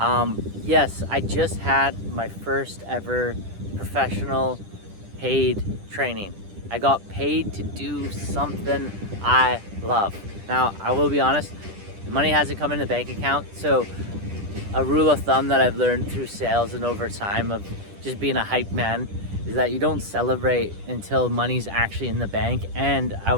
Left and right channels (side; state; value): left; late; 10 ms